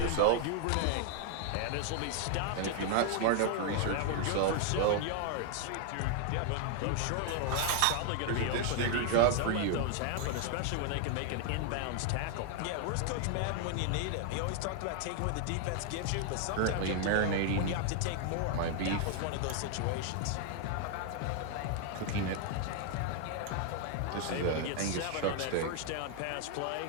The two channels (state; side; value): different; both; correlation 0.00